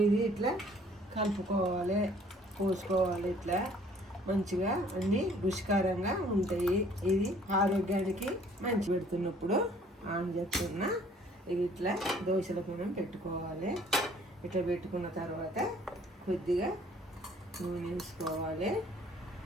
ఇది ఇట్లా కలుపుకోవాలి, పోసుకోవాలి. ఇట్లా మంచిగా అన్నీ రుచికరంగా ఉంటాయి. ఇది ఆరోగ్యానికి మంచి. పెడుతున్నప్పుడు ఆన్ చేస్తున్నా. ఇది ఇట్లా దోశల మనం పెట్టుకోవాలి. ఇట్లా పెట్టుకున్న తర్వాత కొద్దిగా నూనె వేసుకోవాలి.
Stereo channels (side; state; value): both; normal; correlation 0.57